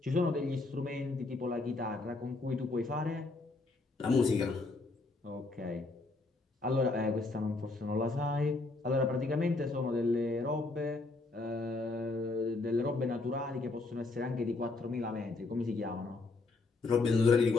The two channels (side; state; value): right; quieter; 3.5 dB